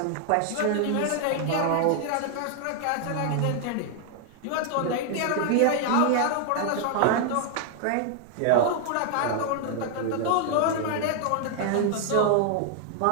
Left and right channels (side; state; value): both; different; correlation 0.00